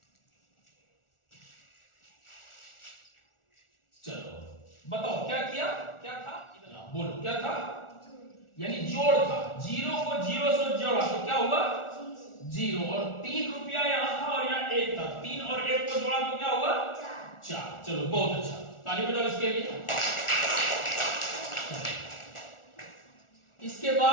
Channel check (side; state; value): right; late; 1.4 ms